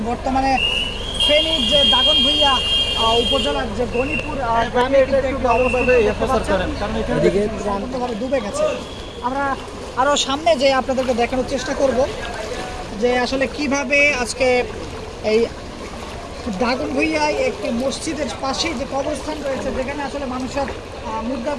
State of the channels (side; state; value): both; identical; correlation 1.00